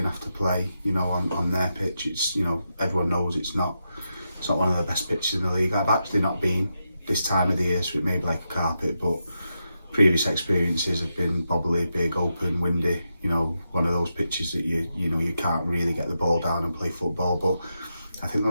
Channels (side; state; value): both; inverted; correlation -0.86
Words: have to play, on their pitch, it's, everyone knows it's not one of the best pitches in the league. I've actually not been this time of the year, so it may be like a carpet, but previous experiences have been bobbly, big, open, windy, one of those pitches that you can't really get the ball down and play football. But I think the